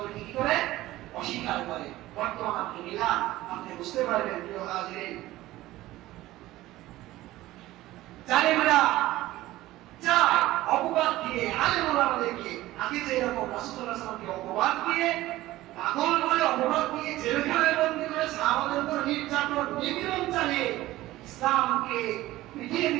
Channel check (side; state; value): left; quieter; 16.6 dB